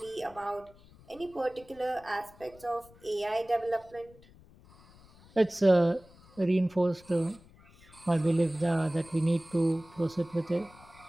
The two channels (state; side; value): noise; left; rumble, 25 dB below the sound